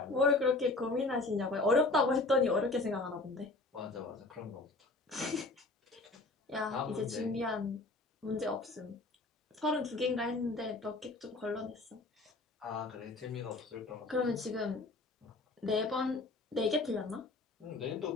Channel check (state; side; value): quieter; right; 3.2 dB